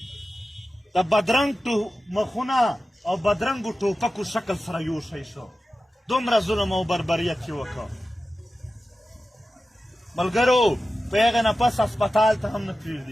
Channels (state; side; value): normal; both; correlation 0.93